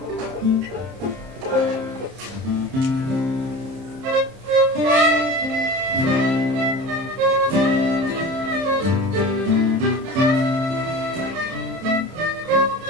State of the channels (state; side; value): late; left; 30 ms